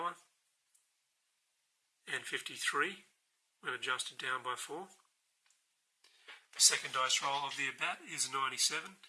and 53 when adjusted down by 4. The second dice roll of the at-bat is 97,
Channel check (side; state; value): both; identical; correlation 1.00